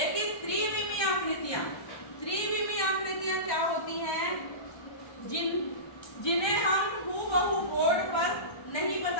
त्रिविमीय आकृतियां क्या होती हैं? जिन्हें हम हूबहू बोर्ड पर नहीं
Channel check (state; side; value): late; right; 1.2 ms